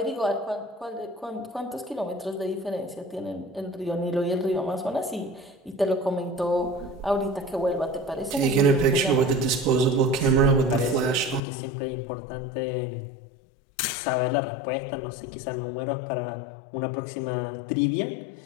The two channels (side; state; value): right; drops out; at 11.4 s